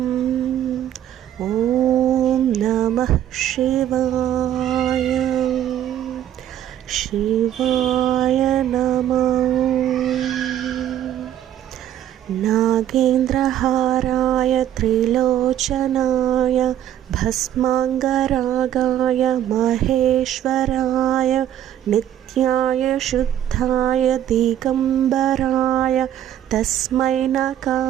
ఓం నమః శివాయ, శివాయ నమో. నాగేంద్రహారాయ త్రిలోచనాయ భస్మాంగరాగాయ మహేశ్వరాయ నిత్యాయ శుద్ధాయ దిగంబరాయ తస్మై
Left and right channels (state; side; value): quieter; left; 11.3 dB